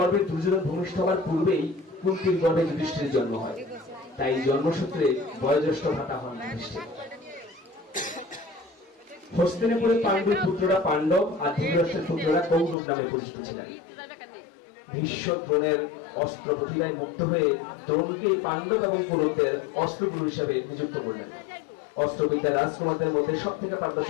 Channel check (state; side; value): drops out; right; at 12.8 s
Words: দুর্যোধন ভূমিষ্ঠ হওয়ার পূর্বেই কুন্তির গর্ভে যুধিষ্ঠিরের জন্ম হয়। তাই জন্মসূত্রে বয়োজ্যেষ্ঠ ভ্রাতা হন যুধিষ্ঠির। হস্তিনাপুরে পাণ্ডুর পুত্ররা পাণ্ডব আর ধৃতরাষ্ট্রের পুত্ররা কৌরব নামে পরিচিত ছিলেন। ভীষ্ম দ্রোণের অস্ত্র প্রতিভায় মুক্ত হয়ে দ্রোণকে পাণ্ডব এবং কৌরবদের অস্ত্রগুরু হিসেবে নিযুক্ত করলেন। অস্ত্রবিদ্যা রাজকুমারদের মধ্যে সব থেকে